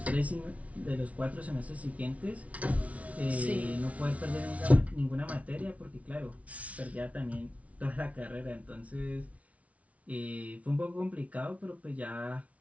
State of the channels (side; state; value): left; late; 0.066 ms